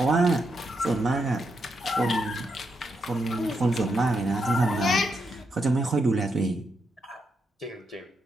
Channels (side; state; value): both; normal; correlation 0.82